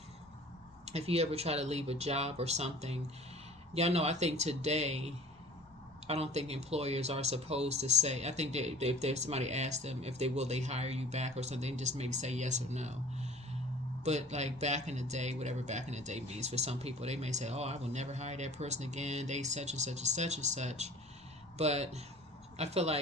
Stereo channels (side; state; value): both; normal; correlation 0.45